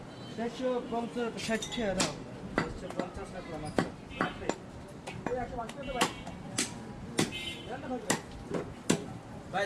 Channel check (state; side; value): identical; both; correlation 1.00